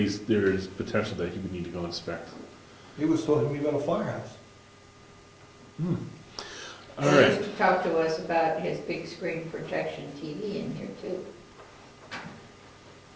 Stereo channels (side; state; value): both; identical; correlation 1.00